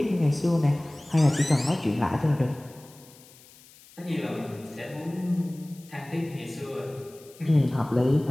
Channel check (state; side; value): noise; left; hiss, 24 dB below the sound